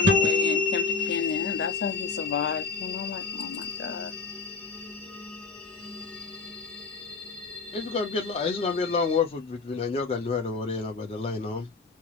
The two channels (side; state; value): right; quieter; 4.4 dB